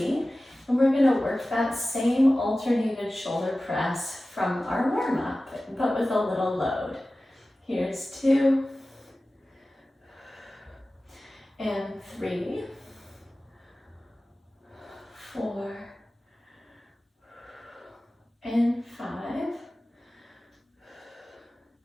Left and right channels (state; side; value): normal; both; correlation 0.96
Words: And we're going to work that same alternated shoulder press from our warm-up, but with a little load. Here's 2, and 3, 4, and 5,